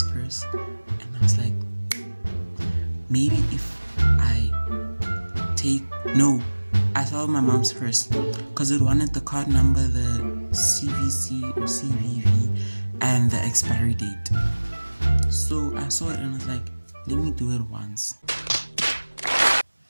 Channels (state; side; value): inverted; both; correlation -1.00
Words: purse and I was like, maybe if I thought of my mom's purse because it wanted the card number, the CVC or CVV, and the expiry date. So I saw it and I was like, let me do it once.